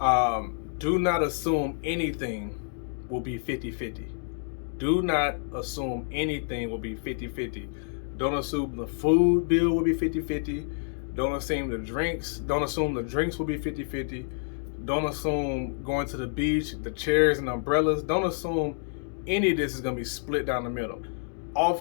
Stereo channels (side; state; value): right; silent; digital silence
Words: do not assume anything will be 50-50. Do not assume anything will be 50-50. Don't assume the food bill will be 50-50. Don't assume the drinks will be 50-50. Don't assume going to the beach, the chairs and umbrellas. Don't assume any of this is going to be split down the middle.